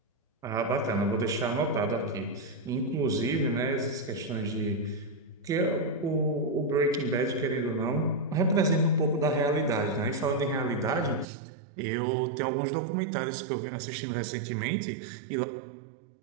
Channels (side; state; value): left; drops out; at 11.2 s